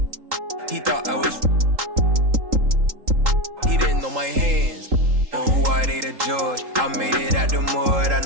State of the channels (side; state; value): left; late; 3.8 ms